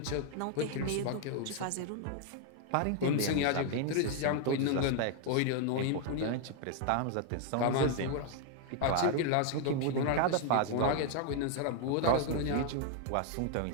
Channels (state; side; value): different; both; correlation 0.00